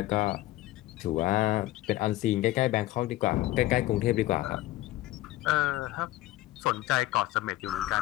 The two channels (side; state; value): right; quieter; 16.2 dB